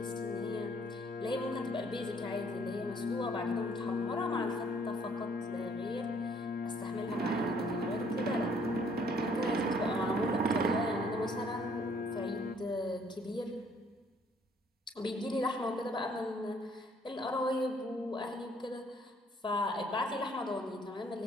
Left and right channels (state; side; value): normal; both; correlation 0.63